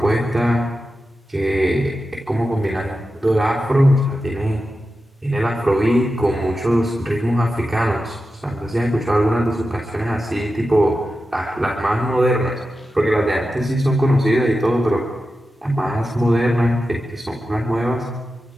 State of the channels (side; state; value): both; normal; correlation 0.91